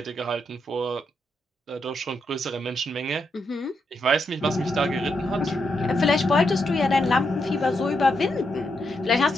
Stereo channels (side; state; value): both; normal; correlation 0.82